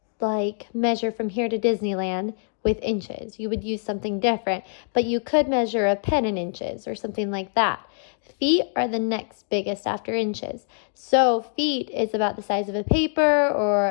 measure from here to Disneyland with inches. You would use something different, but you could measure a pen in inches or something like that. Feet are the next biggest after inches. So feet is about the size of a paper or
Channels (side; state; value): right; silent; digital silence